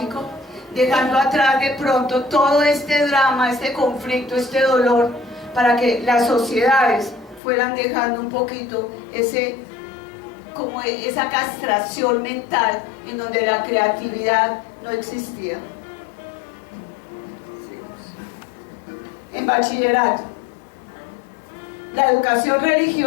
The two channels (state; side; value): drops out; right; at 7.4 s